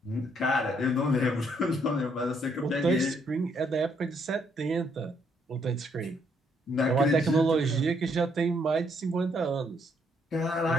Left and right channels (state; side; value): normal; both; correlation 0.71